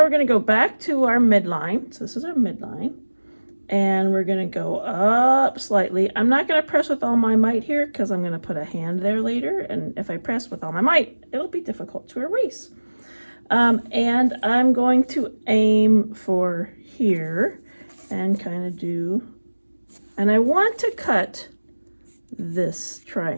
we're going to go back to our midline. So this is our midline. And we're going to go up slightly. I'm not going to press with all my might here because I'm going to put a hand there later. And if I press with all my might, it'll be difficult to erase. And I'm going to aim for here and kind of do, and I want to cut this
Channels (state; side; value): inverted; both; correlation -1.00